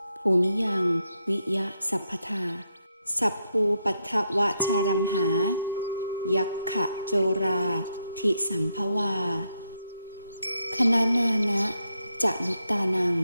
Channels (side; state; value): both; inverted; correlation -0.80